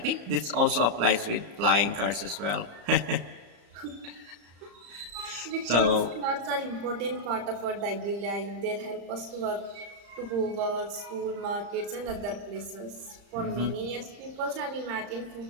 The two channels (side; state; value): left; late; 35 ms